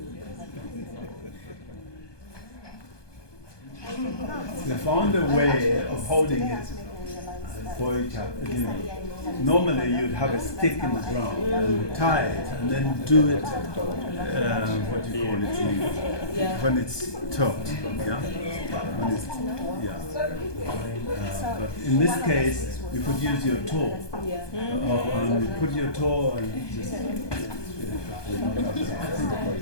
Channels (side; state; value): right; late; 1.2 ms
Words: We found a way of holding it for each other. You know, normally you'd have a stick in the ground and tie it, and then do it. What do you call it? When it's taut. Yeah. When it's, yeah. But in this case, you could use your toe. You put your toe and just.